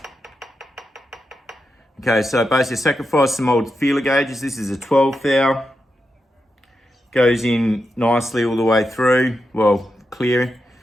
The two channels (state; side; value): normal; both; correlation 0.87